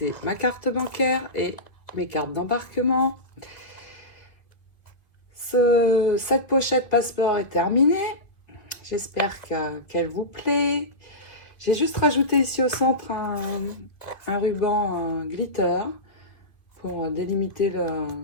ma carte bancaire et mes cartes d'embarquement. Cette pochette passeport est terminée. J'espère qu'elle vous plaît. J'ai juste rajouté ici au centre un ruban glitter pour délimiter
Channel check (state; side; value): late; right; 2.1 ms